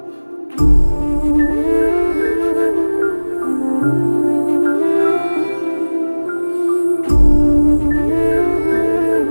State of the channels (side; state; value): both; inverted; correlation -1.00